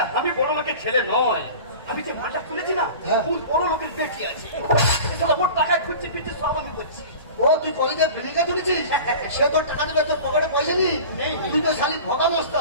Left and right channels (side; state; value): both; inverted; correlation -0.38